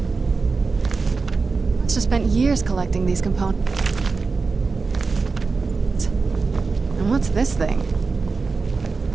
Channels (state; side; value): quieter; left; 4.4 dB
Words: Must have spent years collecting these components. And what's this thing?